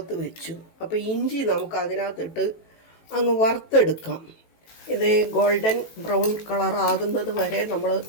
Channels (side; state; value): right; late; 18 ms